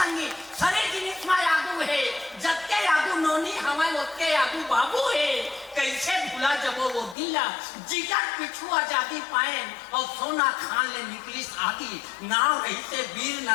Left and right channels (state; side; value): drops out; right; at 7.2 s